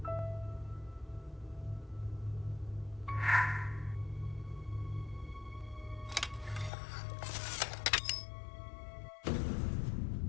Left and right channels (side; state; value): right; drops out; at 6.7 s